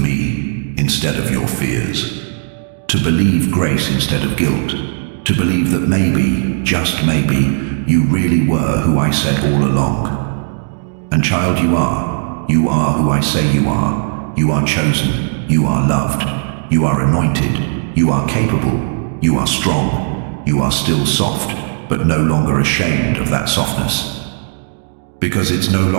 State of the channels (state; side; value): silent; left; digital silence